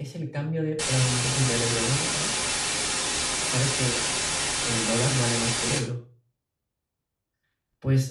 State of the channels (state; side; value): identical; both; correlation 1.00